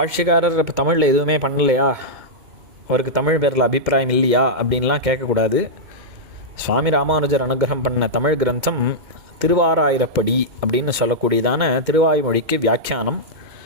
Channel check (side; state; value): left; late; 2.2 ms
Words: இப்போ தமிழில் எதுவுமே பண்ணலையா, அவருக்கு தமிழ் பேரில் அபிப்பிராயம் இல்லையா அப்படின்லாம் கேட்கக்கூடாது. சுவாமி ராமானுஜர் அனுகிரகம் பண்ண தமிழ் கிரந்தம் திருவாராயிரப்படி அப்படின்னு சொல்லக்கூடியதான திருவாய்மொழிக்கு வியாக்கியானம்.